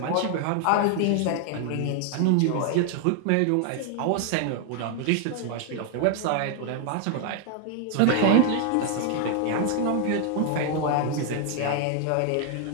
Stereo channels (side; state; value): both; different; correlation 0.00